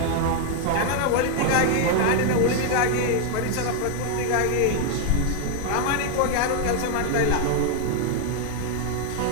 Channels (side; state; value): both; different; correlation 0.01